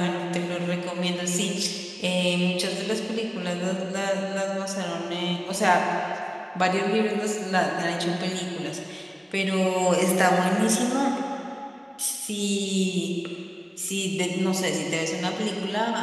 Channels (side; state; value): both; identical; correlation 1.00